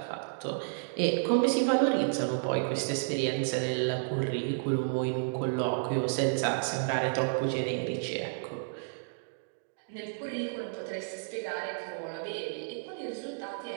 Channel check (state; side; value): silent; left; digital silence